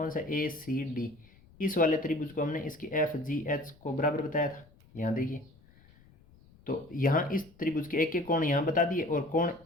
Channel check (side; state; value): left; noise; rumble, 27 dB below the sound